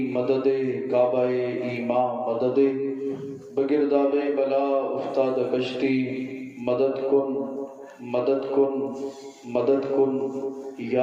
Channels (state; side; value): identical; both; correlation 1.00